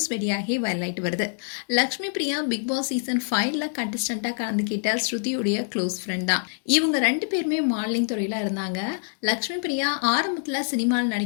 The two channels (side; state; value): right; silent; digital silence